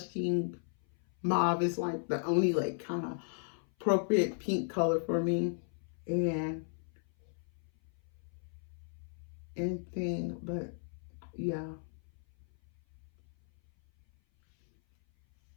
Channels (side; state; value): right; silent; 54 dB below the other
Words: Mauve. It's like the only like kind of appropriate pink color for me. And anything, but yeah.